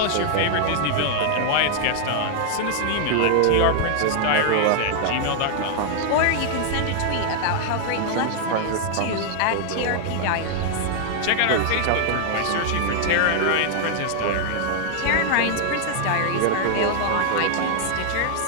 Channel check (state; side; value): different; both; correlation 0.00